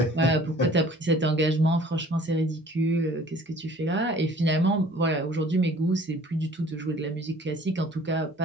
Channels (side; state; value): both; normal; correlation 0.51